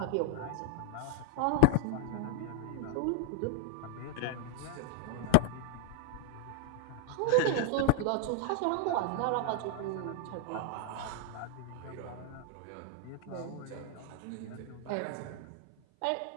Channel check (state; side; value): different; both; correlation 0.00